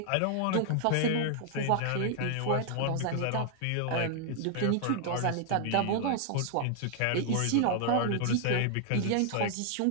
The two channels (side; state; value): both; different; correlation 0.00